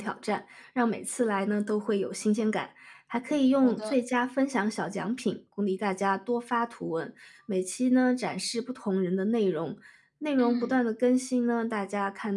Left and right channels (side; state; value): both; identical; correlation 1.00